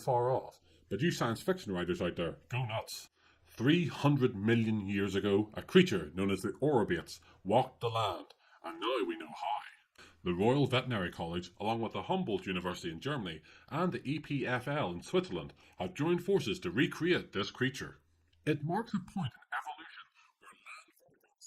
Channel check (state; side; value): identical; both; correlation 1.00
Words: off. But you science fiction writers out there, go nuts! 300 million years ago, a creature known as the Orobates walked the land, and now we know how. The Royal Veterinary College, along with the Humboldt University in Germany and the EPFL in Switzerland, have joined forces to recreate this creature. It marks a point in evolution where land